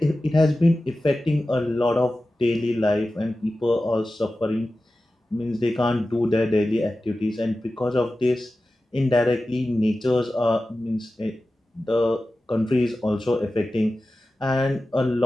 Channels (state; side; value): normal; both; correlation 0.94